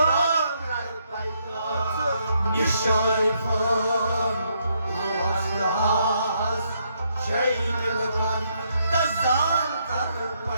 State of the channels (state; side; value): inverted; both; correlation -0.75